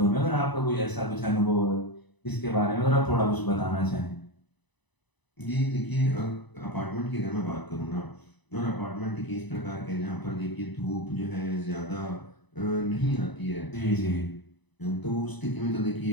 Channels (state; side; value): late; right; 1.0 ms